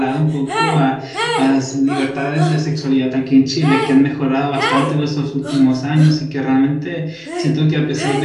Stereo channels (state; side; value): identical; both; correlation 1.00